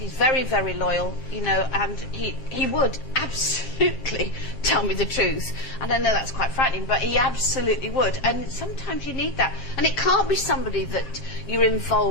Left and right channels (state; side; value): late; right; 7.6 ms